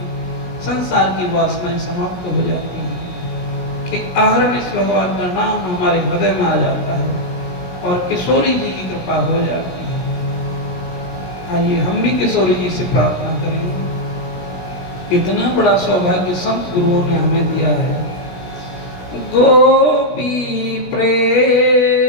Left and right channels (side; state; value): right; late; 16 ms